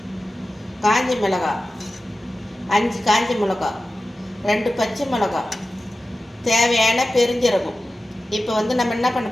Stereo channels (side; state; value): both; normal; correlation 0.95